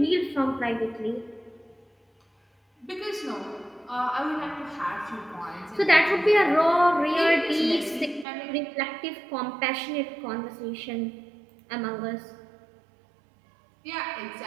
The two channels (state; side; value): drops out; left; at 8.2 s